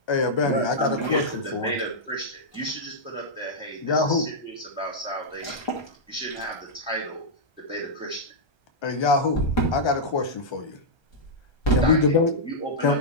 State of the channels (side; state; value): right; late; 1.3 ms